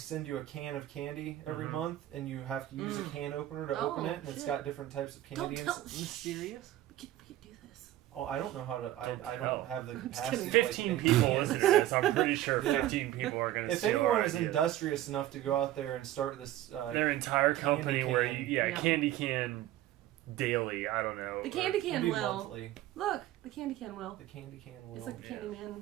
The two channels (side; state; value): left; quieter; 14.2 dB